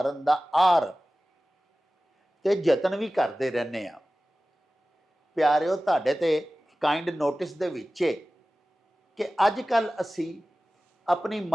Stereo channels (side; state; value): both; normal; correlation 0.96